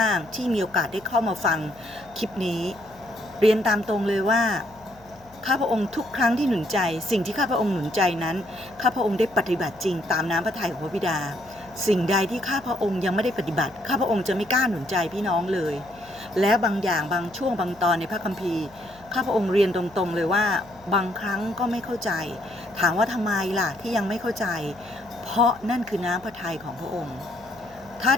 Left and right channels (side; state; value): left; noise; hum, 25 dB below the sound